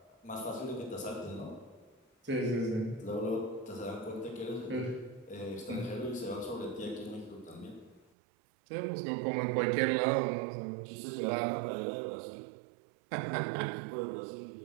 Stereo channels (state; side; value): drops out; left; at 8.1 s